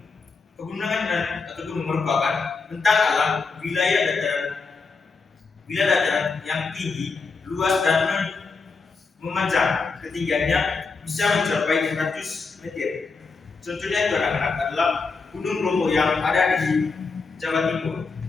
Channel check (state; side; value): quieter; right; 4.5 dB